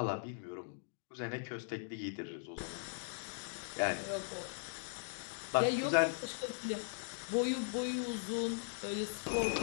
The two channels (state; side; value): silent; right; digital silence